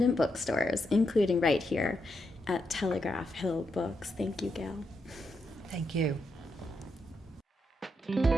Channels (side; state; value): both; normal; correlation 0.82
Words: bookstores, including right here at Telegraph Hill Books. Thank you, Gail. Thank you.